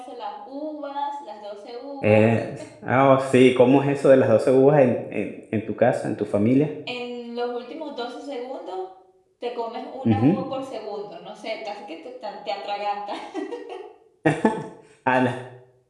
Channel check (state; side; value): identical; both; correlation 1.00